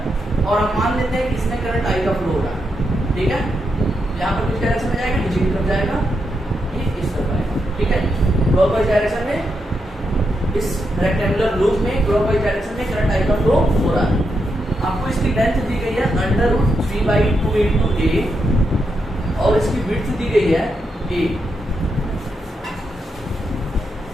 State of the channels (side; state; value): both; normal; correlation 0.83